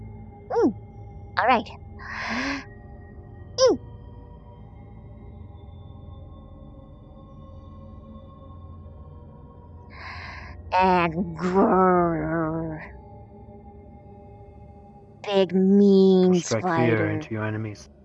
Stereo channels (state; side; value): identical; both; correlation 1.00